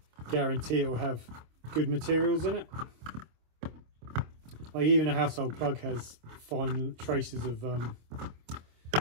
guarantee it will have good materials in it. Like even a household plug has fine traces of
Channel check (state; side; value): late; left; 26 ms